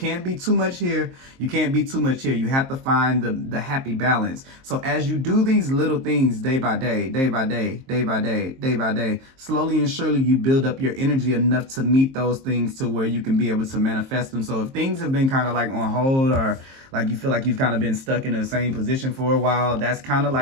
be too much here, you can't be too much here. You have to find the happy balance. So as you do these little things day by day, day by day, day by day, day by day, slowly and surely you build up your energy enough to meet those things to where you can be able to manifest them. So if things have been kind of like on hold, or like you feel like you've kind of been stuck in the same position for a while, that's kind of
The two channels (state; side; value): late; left; 23 ms